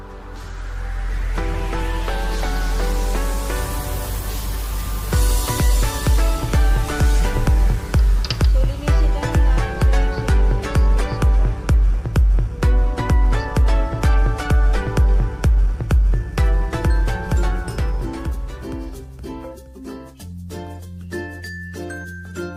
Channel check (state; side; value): identical; both; correlation 1.00